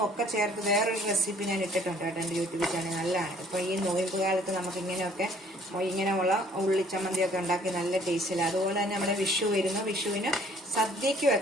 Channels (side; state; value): both; normal; correlation 0.58